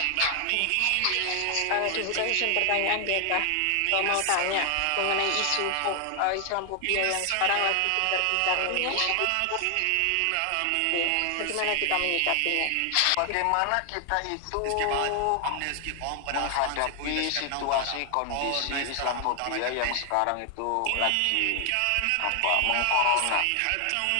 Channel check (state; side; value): different; both; correlation 0.00